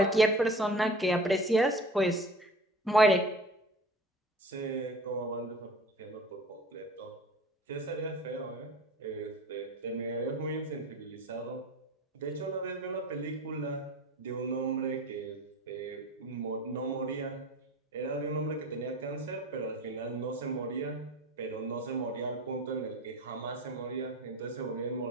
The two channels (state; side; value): normal; both; correlation 0.40